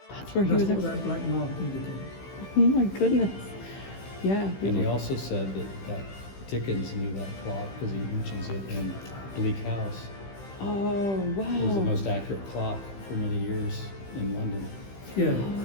That's where he That's was. what that black mark indicates. Oh my goodness. Yeah. And he also said that Dickens knew that clock because he mentions it in Bleak House. Oh wow. It was the most accurate clock for many years in London. Yeah,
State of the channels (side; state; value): right; late; 15 ms